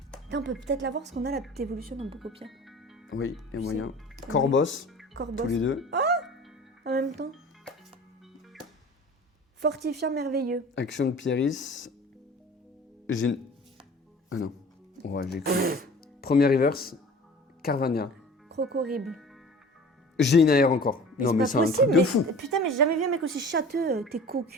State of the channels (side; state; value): both; normal; correlation 0.43